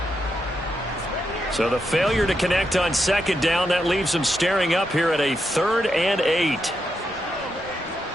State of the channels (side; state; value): both; normal; correlation 0.83